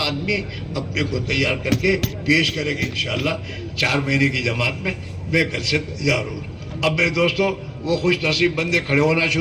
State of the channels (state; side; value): identical; both; correlation 1.00